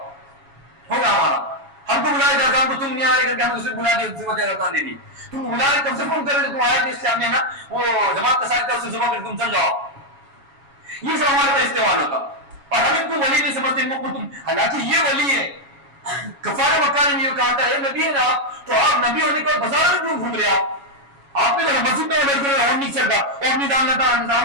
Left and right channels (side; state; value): left; late; 7.2 ms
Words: ہوگا ہمارا، ہم کو بلایا جاتا، ہم کو تم نہیں آ رہے کر کے ہم اسے بلا دیا، اسے وجہ دے دی، تم بلا رہے کب سے فون کر رہے تم آئے تھے اس سامنے نا، وہ جماعت کا ساتھ اسے زبان کر تم چل جاؤ، یہ سب ہمارے پر استعمال ہوتا، اور ہم ان کو ولی نہیں سمجھتے، ان کو تم، حالانکہ یہ ولی ہے، کفار مکہ نے یہ کہا تھا اے نبی ہے نا تو آپ نبی ہونے کے بعد بازار میں کیوں گھوم رہے آپ نے تو مسجد میں بیٹھ کر اور نہیں چلتا اور نہیں ڈالنا تھا،